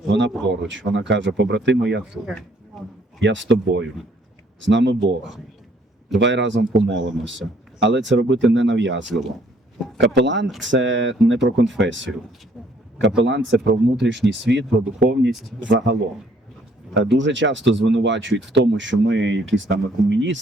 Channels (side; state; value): both; normal; correlation 0.63